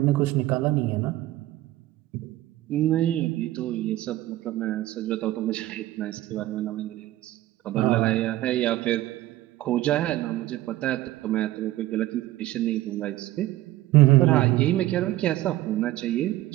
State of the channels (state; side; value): quieter; left; 15.8 dB